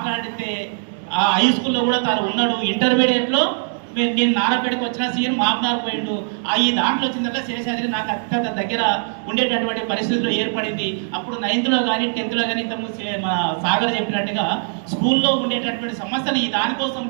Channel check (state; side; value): silent; left; digital silence